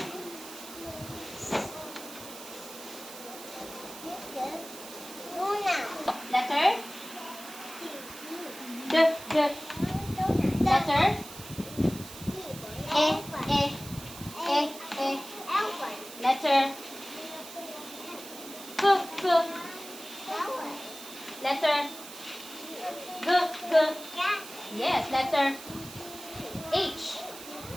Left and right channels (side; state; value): right; noise; hiss, 14 dB below the sound